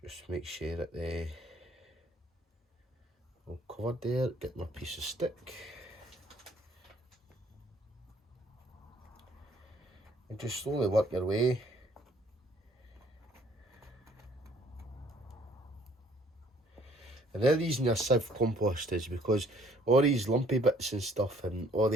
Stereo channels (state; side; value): normal; both; correlation 0.60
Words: Just make sure that they're all covered there. Get my piece of stick. And just slowly work your way. And the reason your sieve compost is because all these lumpy bits and stuff and all